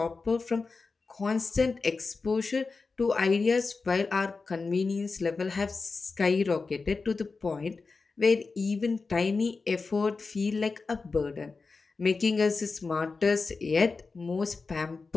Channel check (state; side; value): quieter; right; 4.3 dB